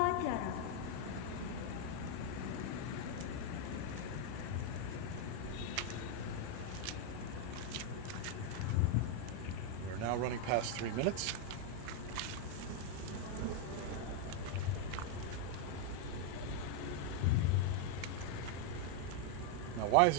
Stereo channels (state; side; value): different; both; correlation 0.00